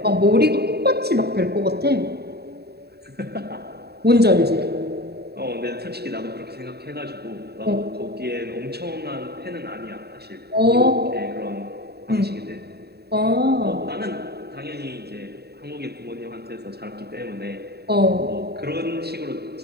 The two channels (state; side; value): late; left; 0.47 ms